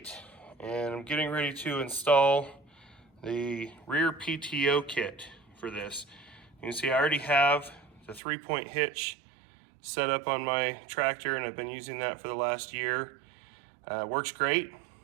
and I'm getting ready to install the rear PTO kit for this. You can see I already have the 3-point hitch set up on my tractor, and I've been using that for the last year. Works great,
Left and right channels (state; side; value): drops out; left; at 8.2 s